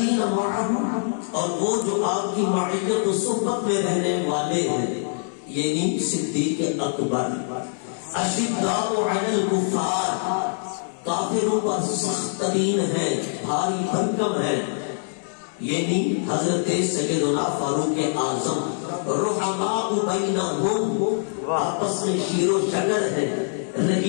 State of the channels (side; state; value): right; silent; digital silence